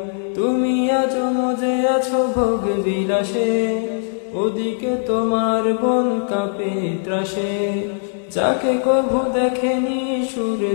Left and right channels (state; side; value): silent; right; digital silence